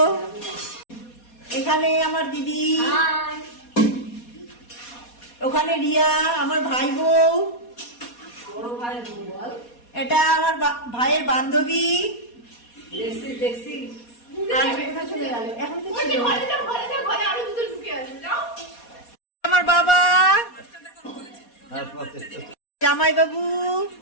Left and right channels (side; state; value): right; late; 4.2 ms